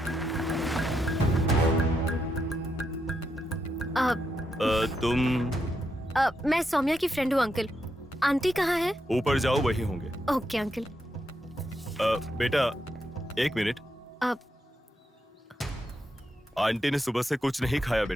तुम? मैं सौम्या की फ्रेंड हूँ अंकल। आंटी कहाँ है? ऊपर जाओ, वही होंगे। Okay uncle. बेटा 1 मिनट। आंटी ने सुबह से कुछ नहीं खाया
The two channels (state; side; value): normal; both; correlation 0.82